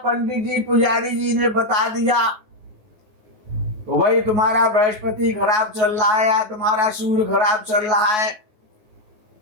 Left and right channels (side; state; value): left; late; 9.4 ms